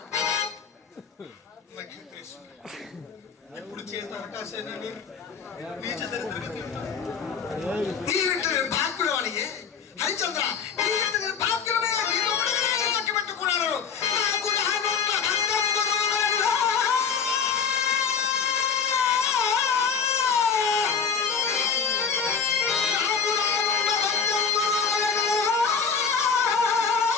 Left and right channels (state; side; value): quieter; right; 6.1 dB